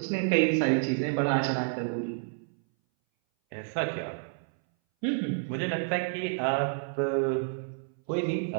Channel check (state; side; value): silent; left; 58 dB below the other